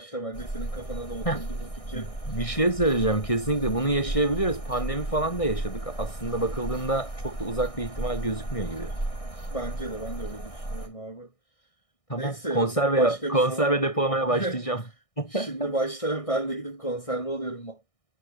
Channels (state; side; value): late; right; 1.6 ms